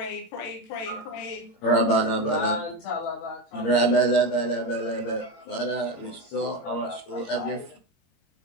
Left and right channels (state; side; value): late; right; 21 ms